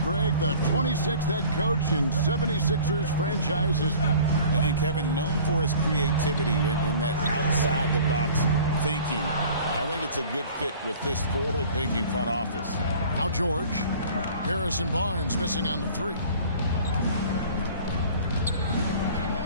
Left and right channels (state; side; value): inverted; both; correlation -0.46